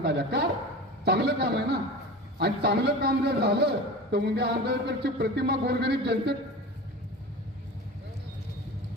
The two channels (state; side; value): normal; both; correlation 0.32